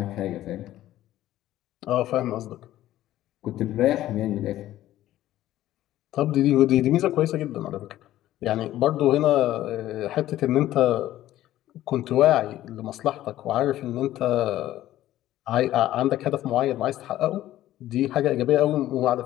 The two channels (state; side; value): quieter; right; 14.0 dB